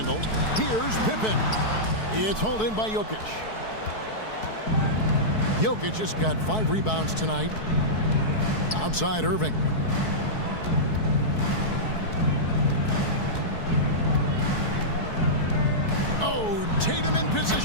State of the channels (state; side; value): late; right; 4.6 ms